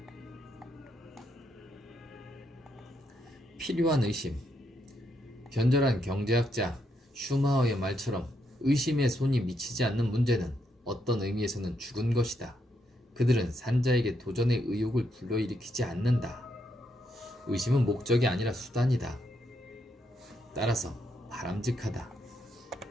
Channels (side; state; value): both; normal; correlation 0.78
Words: 필요한 의심. 견절한 경제학자 슈마허의 말처럼 의심의 손이 미치지 않는 문제는 어떤 의미에서는 죽은 것이다. 그들은 산자에게 도전의 의욕을 불러일으키지 않는다. 의심은 목적이 아니라 수단이다. 따라서 바람직하다.